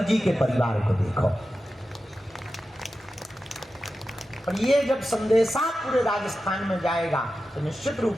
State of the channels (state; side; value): normal; both; correlation 0.92